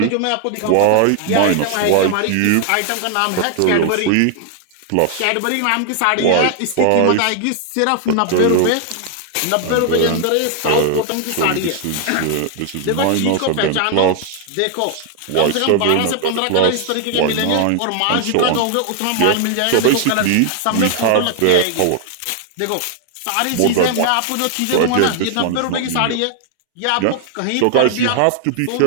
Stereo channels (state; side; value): different; both; correlation 0.00